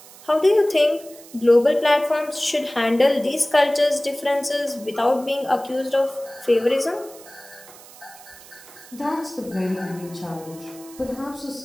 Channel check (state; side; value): noise; right; hiss, 20 dB below the sound